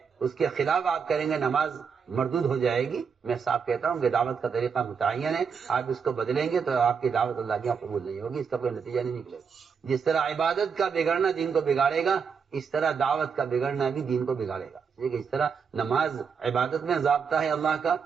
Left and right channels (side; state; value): left; quieter; 6.2 dB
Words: اس کے خلاف آپ کریں گے نماز مردود ہو جائے گی. میں صاف کہتا ہوں کہ دعوت کا طریقہ متعین ہے, آپ اس کو بدلیں گے تو آپ کی دعوت اللہ کی قبول نہیں ہوگی, اس کا کوئی نتیجہ نہیں نکلے گا. جس طرح عبادت کا بگڑنا دین کو بگاڑے گا, اس طرح دعوت کا بگڑنا بھی دین کو بگاڑے گا. اس طرح نماز عبادت میں ضابطہ ہے اللہ کا,